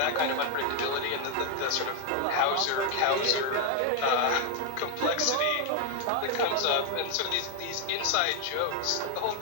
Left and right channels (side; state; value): both; different; correlation 0.01